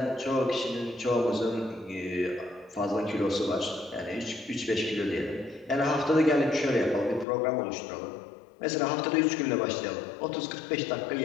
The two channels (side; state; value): right; drops out; at 7.2 s